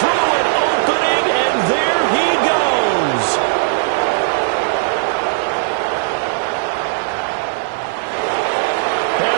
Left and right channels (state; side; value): silent; left; digital silence